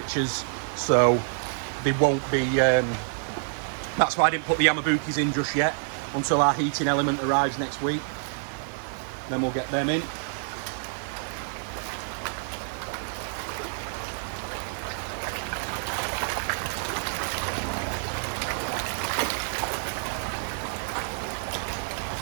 so they won't be, that's why I didn't put the Yamabukis in just yet, until our heating element arrives next week. Then we'll get them in.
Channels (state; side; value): silent; left; digital silence